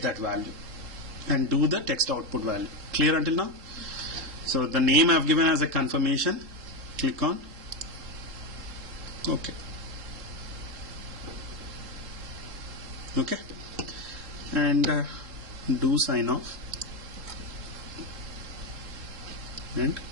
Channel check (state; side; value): late; left; 3.7 ms